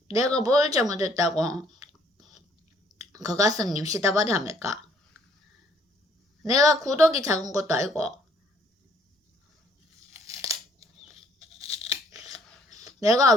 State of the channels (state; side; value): normal; both; correlation 0.64